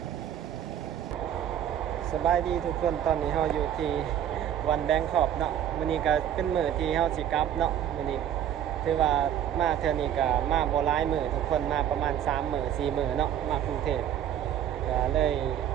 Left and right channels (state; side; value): quieter; left; 10.4 dB